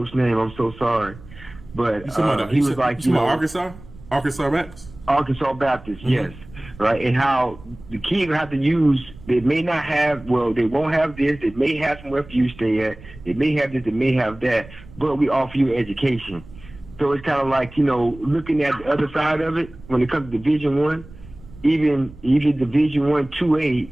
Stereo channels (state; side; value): noise; right; rumble, 19 dB below the sound